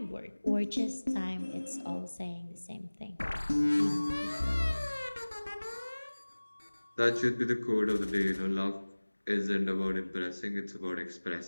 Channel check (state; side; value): inverted; both; correlation -1.00